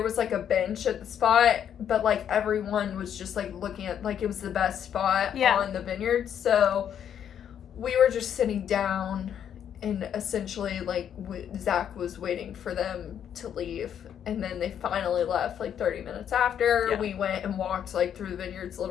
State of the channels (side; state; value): right; quieter; 9.1 dB